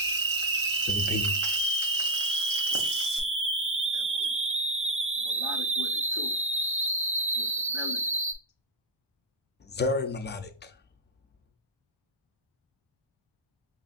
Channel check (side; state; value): both; normal; correlation 0.01